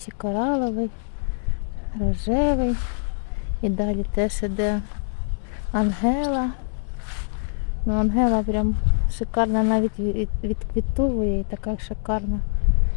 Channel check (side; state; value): right; silent; digital silence